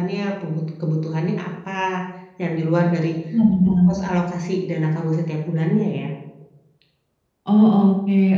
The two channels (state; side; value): identical; both; correlation 1.00